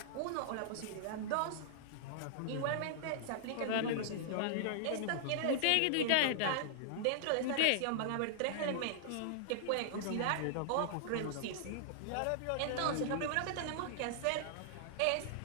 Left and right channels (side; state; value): both; different; correlation -0.01